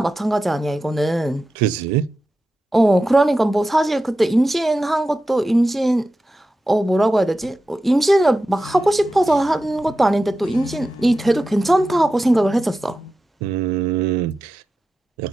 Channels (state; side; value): normal; both; correlation 0.92